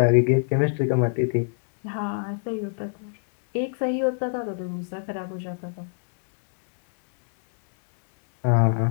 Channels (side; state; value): right; silent; digital silence